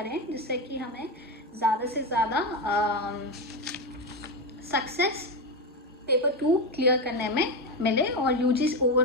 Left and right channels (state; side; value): normal; both; correlation 0.13